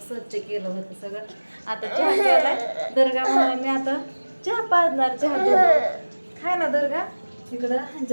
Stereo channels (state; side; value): inverted; both; correlation -1.00